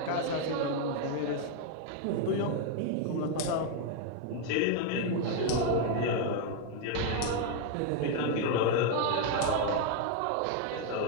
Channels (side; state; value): both; different; correlation 0.00